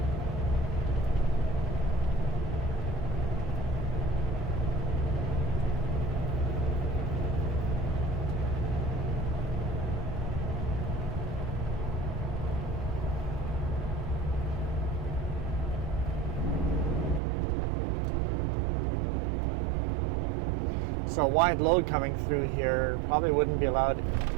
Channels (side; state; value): left; drops out; at 17.2 s